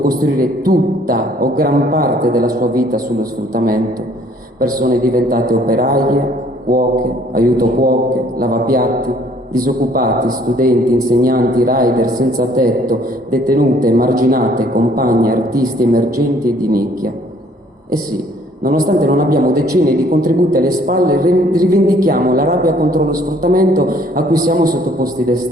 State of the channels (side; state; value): both; normal; correlation 0.60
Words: tutta o gran parte della sua vita sullo sfruttamento. Persone diventate operaie, cuoche, aiuto cuoche, lavapiatti, disoccupati, studenti, insegnanti, rider senza tetto, detenute, emarginate, compagne, artisti emergenti e di nicchia. E sì, Nonostante non abbiamo decenni di contributi alle spalle, rivendichiamo la rabbia contro lo sfruttamento a cui siamo sottoposti